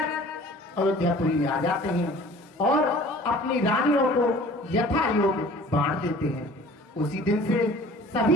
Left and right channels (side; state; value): both; normal; correlation 0.47